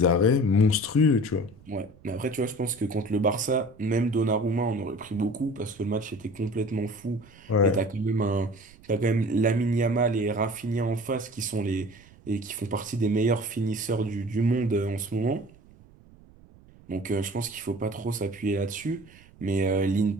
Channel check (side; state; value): right; noise; rumble, 25 dB below the sound